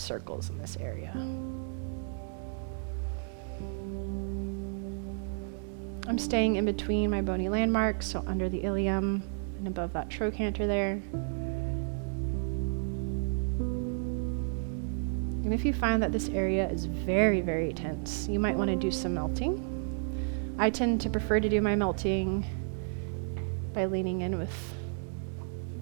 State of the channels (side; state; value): left; silent; 57 dB below the other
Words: in this area. I'm staying in between my bony landmarks, so under the ilium and above that trochanter there. And if you find that this area is very, very tense, you might want to do some melting. I tend to prefer to do my melting by leaning in with